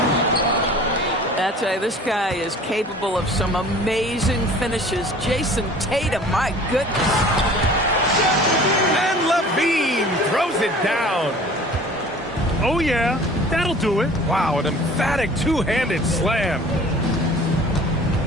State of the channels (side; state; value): both; normal; correlation 0.46